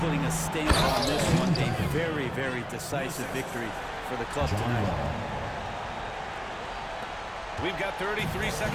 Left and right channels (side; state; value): both; identical; correlation 1.00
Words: putting a stamp on this one. A very, very decisive victory for the club tonight. We've got 33